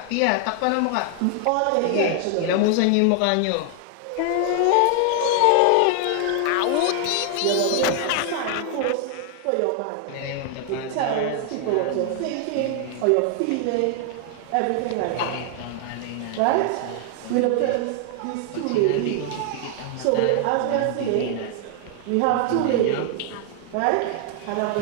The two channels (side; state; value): both; different; correlation 0.00